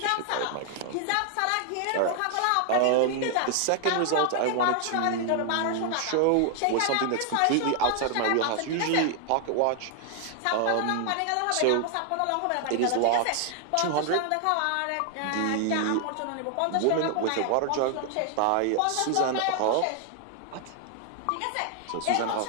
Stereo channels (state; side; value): different; both; correlation 0.00